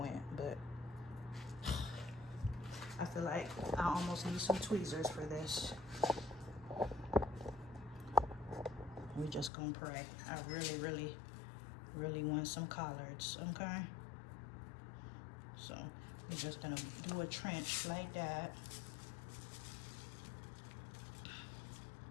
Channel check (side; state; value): right; drops out; at 9.5 s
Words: but I feel like I almost need some tweezers for this. We just gonna pray. I really want some collards, okay? So we're just gonna do a trench like that.